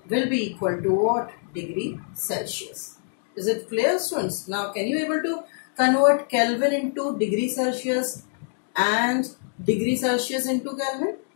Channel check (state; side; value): silent; right; digital silence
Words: will be equal to what? Degree Celsius. Is it clear, students? Now can you able to convert Kelvin into degree Celsius and degree Celsius into Kelvin?